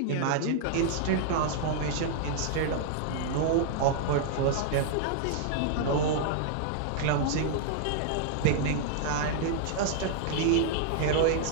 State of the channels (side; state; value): both; different; correlation -0.01